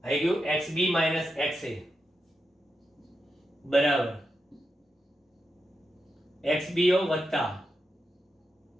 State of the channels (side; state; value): both; normal; correlation 0.87